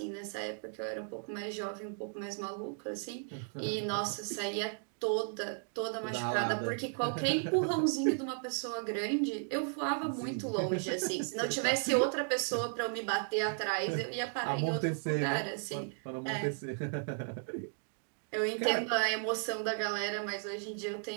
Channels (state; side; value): silent; left; 54 dB below the other